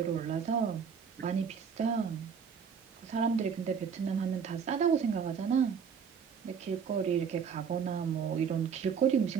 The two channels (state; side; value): quieter; left; 6.8 dB